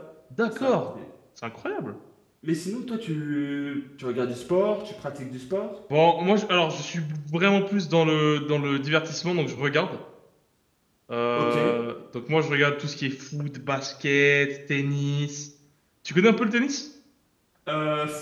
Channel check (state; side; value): identical; both; correlation 1.00